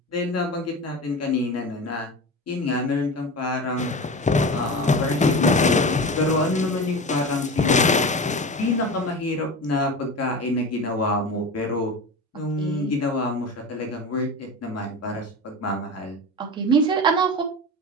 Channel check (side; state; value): both; normal; correlation 0.28